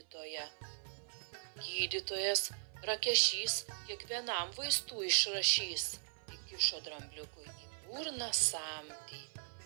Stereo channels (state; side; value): silent; left; 52 dB below the other